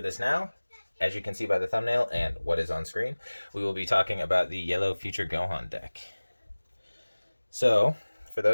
now. As you can see by the thumbnail and what is on screen, we will be talking about the Yellow Future Gohan deck. So, for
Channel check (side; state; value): both; inverted; correlation -1.00